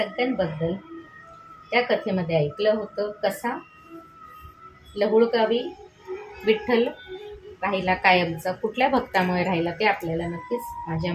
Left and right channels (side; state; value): both; identical; correlation 1.00